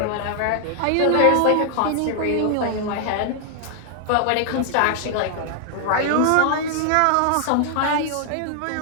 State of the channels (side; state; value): both; different; correlation 0.00